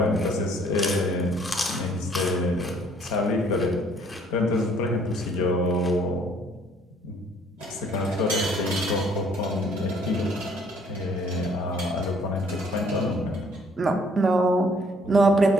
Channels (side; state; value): both; normal; correlation 0.61